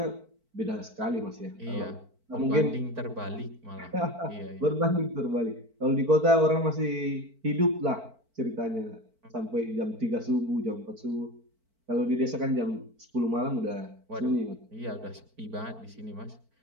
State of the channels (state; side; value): late; left; 4.5 ms